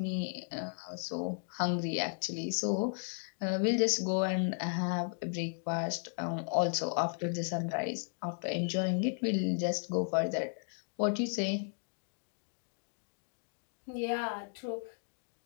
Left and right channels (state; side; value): silent; right; digital silence